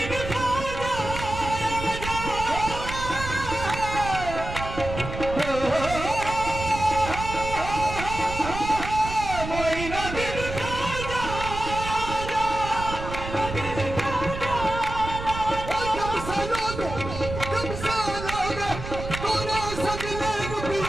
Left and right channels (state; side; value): noise; right; rumble, 7 dB below the sound